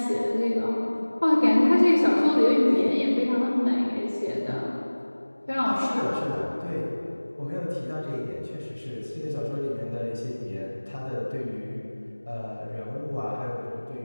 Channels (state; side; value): inverted; both; correlation -1.00